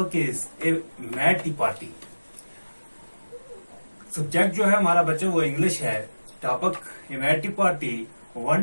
is a mad tea party. Subject जो है हमारा बच्चे वो English है. Topic a mad tea party.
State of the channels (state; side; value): inverted; both; correlation -1.00